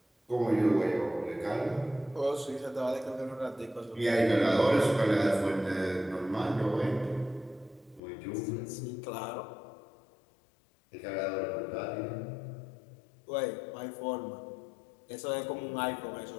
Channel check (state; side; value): drops out; right; at 8.0 s